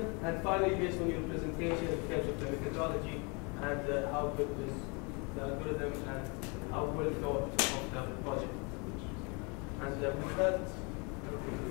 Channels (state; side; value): quieter; right; 31.5 dB